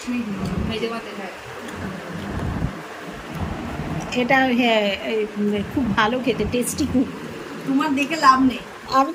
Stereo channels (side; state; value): both; identical; correlation 1.00